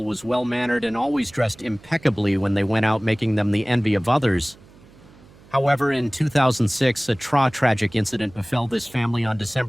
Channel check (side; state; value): right; noise; hum, 25 dB below the sound